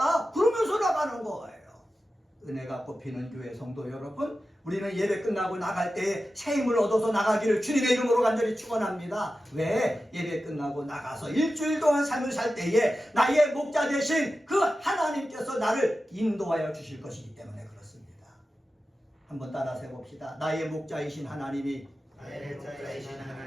그러면서 나가는 거예요. 은혜가 꼽히는 교회 성도 여러분, 우리는 예배 끝나고 나갈 때에 새 힘을 얻어서 나가기를 주님의 이름으로 간절히 축원합니다. 왜? 예배 끝나고 나가서 일주일 동안 삶을 살 때에 나의 목자 되신 그 하나님께서 나를 인도하여 주실 것이기 때문에 그렇습니다. 한번 따라서 해봅시다. 나의 목자이신 하나님이 나의 목자이신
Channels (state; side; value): normal; both; correlation 0.93